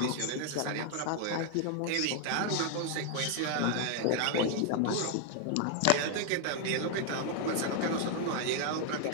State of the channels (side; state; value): both; different; correlation 0.00